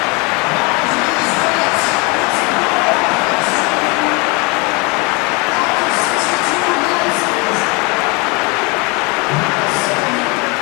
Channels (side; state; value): right; quieter; 29.0 dB